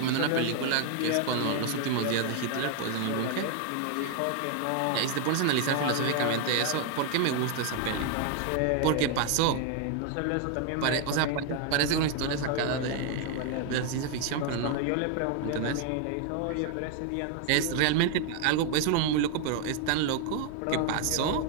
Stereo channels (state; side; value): different; both; correlation 0.01